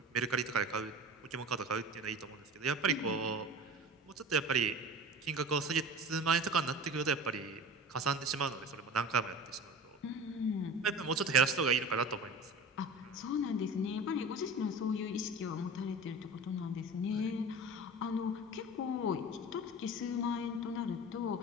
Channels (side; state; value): both; normal; correlation 0.35